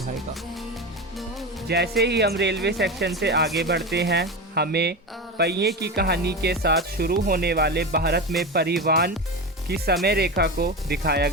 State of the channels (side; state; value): both; normal; correlation 0.22